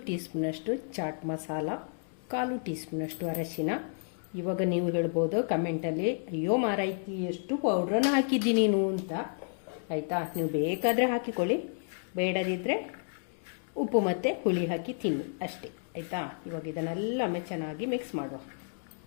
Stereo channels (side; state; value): right; silent; digital silence